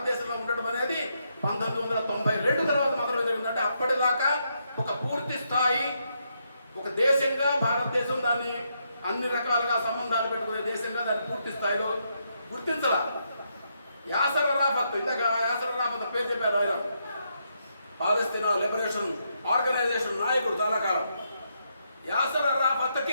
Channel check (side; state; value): both; inverted; correlation -0.79